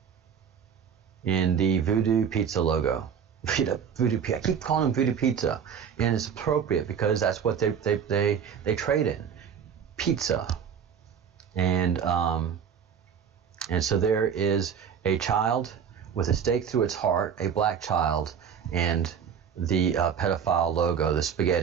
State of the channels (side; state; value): left; quieter; 7.6 dB